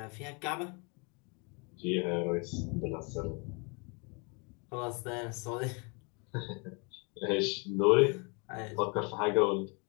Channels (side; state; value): right; quieter; 32.9 dB